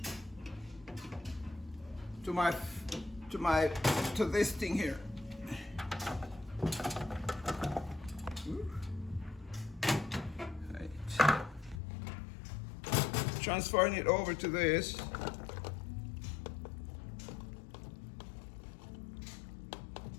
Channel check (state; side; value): drops out; right; at 11.8 s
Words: this thing here. Right. Transferring it over to this.